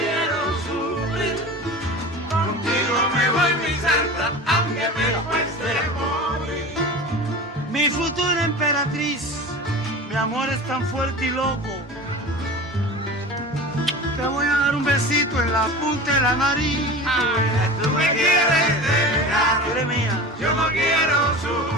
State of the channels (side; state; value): both; normal; correlation 0.33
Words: Aunque me cueste morir. Mi futura emperatriz, mi amor es tan fuerte y loco. Te voy a dar un besito en la punta de la nariz. Tú me quieres dejar, Eres mía. yo no quiero